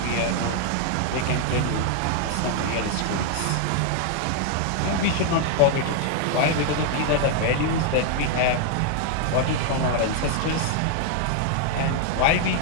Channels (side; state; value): both; different; correlation 0.00